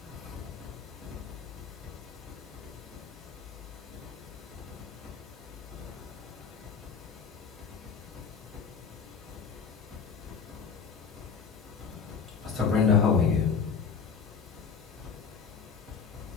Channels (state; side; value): quieter; right; 6.0 dB